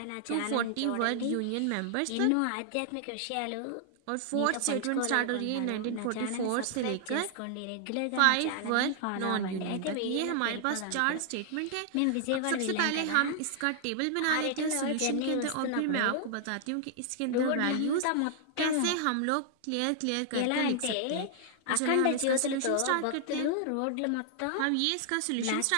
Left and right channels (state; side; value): different; both; correlation 0.00